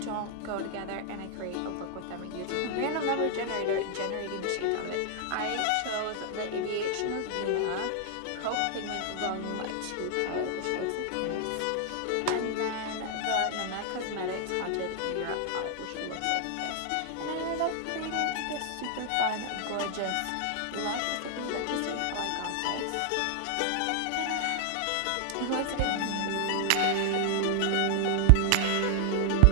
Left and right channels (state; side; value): different; both; correlation 0.00